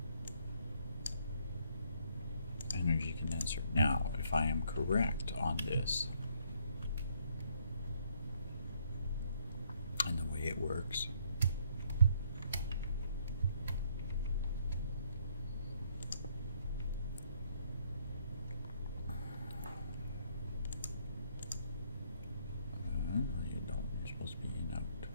Energy condenser. Now, if I am correct on this, and the way it works,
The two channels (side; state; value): both; inverted; correlation -0.69